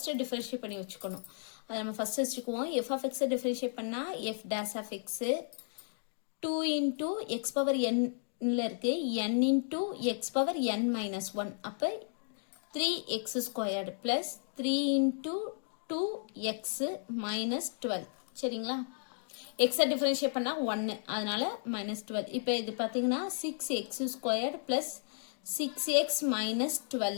differentiate பண்ணி வச்சுக்கணும். அத நம்ம first வச்சுக்குவோம். f of x differentiate பண்ணா f dash of x 2 into x power n இருக்கு n into x power n minus 1 அப்ப 3x squared plus 3 into 2x minus 12 சரிங்களா x differentiate பண்ணா 1 அதனால minus 12 இப்போ இது பாத்தீங்கன்னா 6x squared plus 6x minus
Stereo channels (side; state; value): right; silent; digital silence